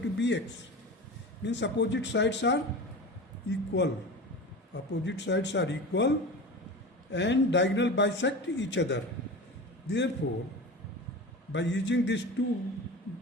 Means opposite sides are equal. Opposite sides are equal and diagonal bisect each other. Therefore by using these two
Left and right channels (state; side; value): normal; both; correlation 0.31